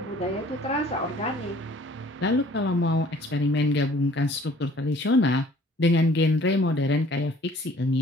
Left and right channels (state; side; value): normal; both; correlation 0.54